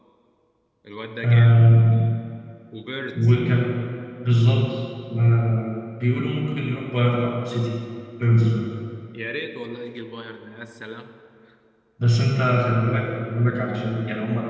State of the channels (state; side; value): identical; both; correlation 1.00